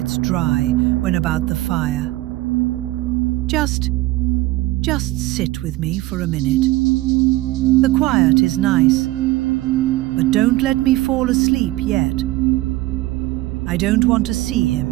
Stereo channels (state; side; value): quieter; left; 18.2 dB